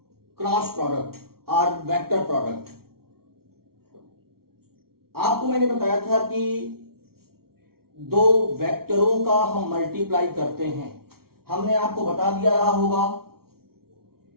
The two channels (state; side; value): late; left; 0.94 ms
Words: cross product or vector product. आपको मैंने बताया था कि दो वेक्टरों का हम मल्टीप्लाई करते हैं. हमने आपको बता दिया रहा होगा